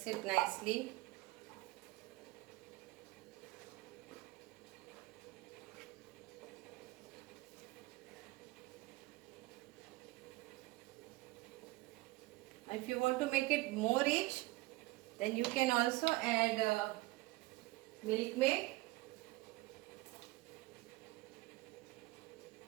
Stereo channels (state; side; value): quieter; left; 21.0 dB